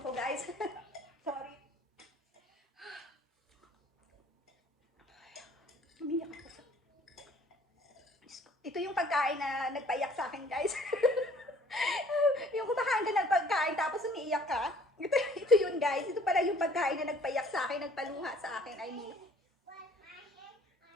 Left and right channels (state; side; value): normal; both; correlation 0.55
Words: ko guys. Sorry. Umiyak ako sa... Ito yung pagkain na nagpaiyak sa akin guys. Yung kumakain ka ng pagkain tapos umiiyak ka. Ito yun guys. Ito pala yung pagkain na nagpaiyak sa akin, nagpaluha sa akin. I mean.